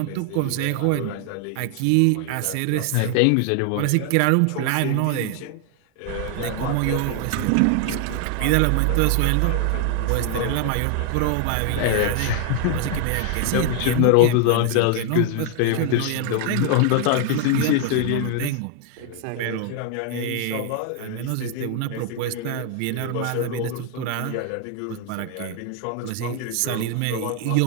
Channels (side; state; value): both; different; correlation 0.00